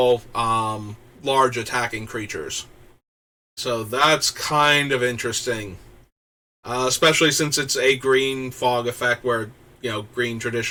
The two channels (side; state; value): both; identical; correlation 1.00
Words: large attacking creatures. So that's kind of interesting. Especially since it's a green fog effect where, green